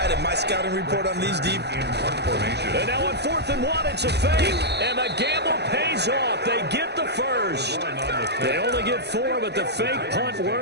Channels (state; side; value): late; left; 0.49 ms